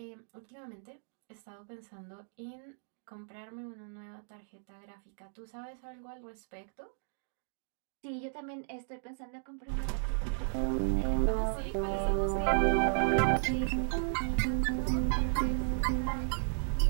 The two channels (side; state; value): left; silent; digital silence